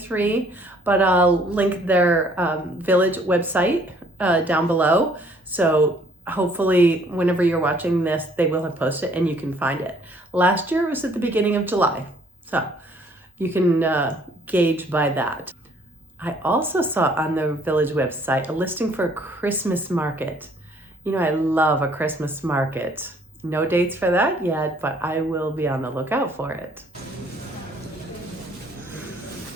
but I'll link their village website down below. So hopefully whenever you're watching this, they will have posted and you can find it. Last year it was at the beginning of July. So you can gauge by that. I also saw on the village website a listing for a Christmas market. You know, I love a Christmas market. No dates for that yet, but I will be on the lookout for it.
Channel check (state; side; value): normal; both; correlation 0.61